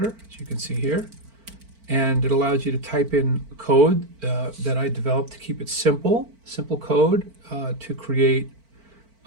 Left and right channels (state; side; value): late; left; 4.5 ms